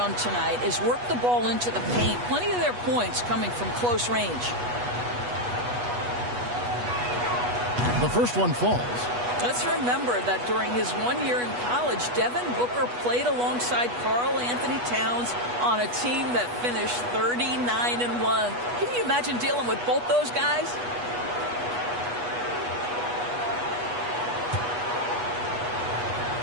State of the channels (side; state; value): left; late; 8.2 ms